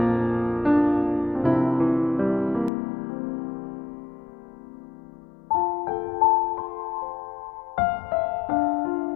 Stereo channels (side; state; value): right; drops out; at 2.7 s